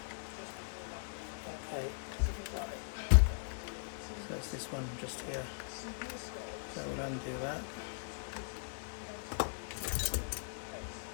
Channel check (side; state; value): right; silent; digital silence